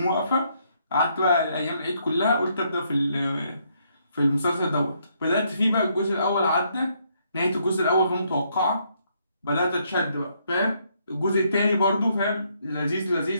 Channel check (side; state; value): both; inverted; correlation -0.72